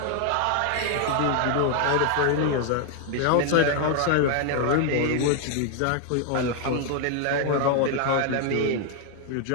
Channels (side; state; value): both; different; correlation 0.00